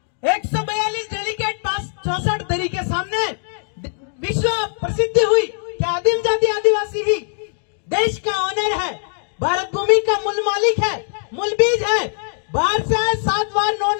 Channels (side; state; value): right; silent; digital silence